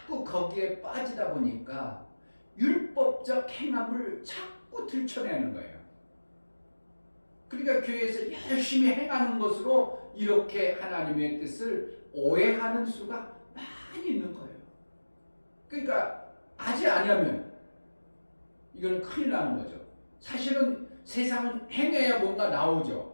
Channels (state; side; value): inverted; both; correlation -1.00